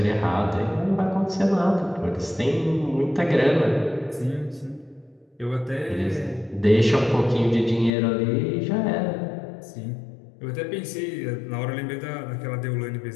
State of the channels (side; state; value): right; drops out; at 7.9 s